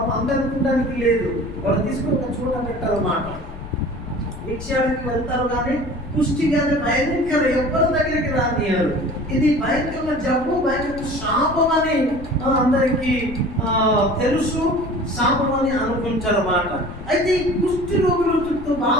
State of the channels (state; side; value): noise; left; rumble, 14 dB below the sound